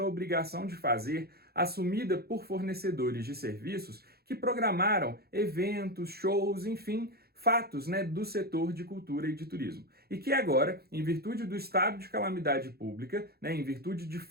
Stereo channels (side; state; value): left; late; 0.46 ms